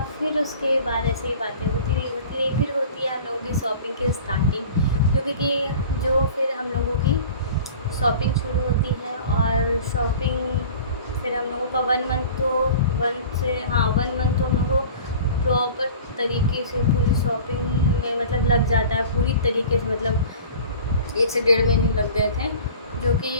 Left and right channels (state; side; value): inverted; both; correlation -0.42